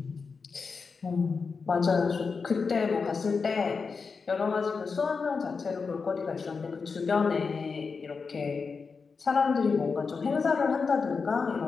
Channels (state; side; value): quieter; right; 5.0 dB